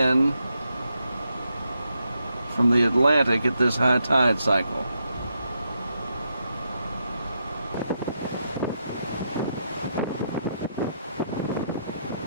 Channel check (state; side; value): inverted; both; correlation -0.82